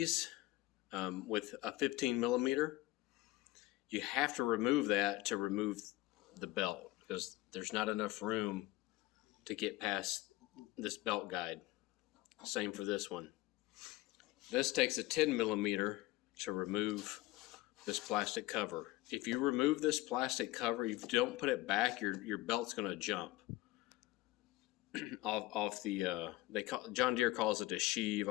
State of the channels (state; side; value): quieter; right; 18.4 dB